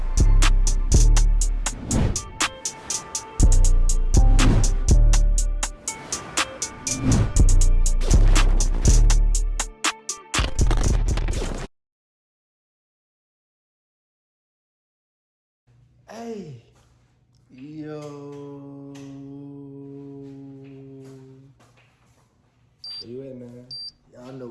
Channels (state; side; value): identical; both; correlation 1.00